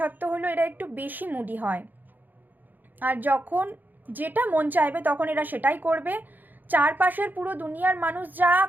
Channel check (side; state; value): left; late; 0.086 ms